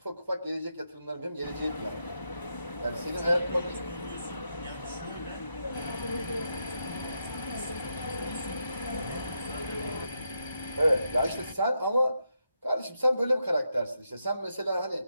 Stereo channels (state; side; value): inverted; both; correlation -0.83